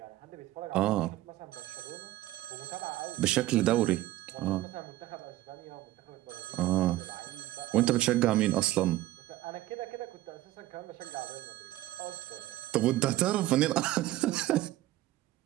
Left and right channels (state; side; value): quieter; left; 15.7 dB